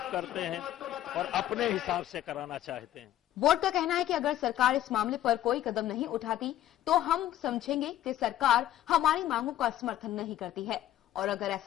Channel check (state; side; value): quieter; right; 12.8 dB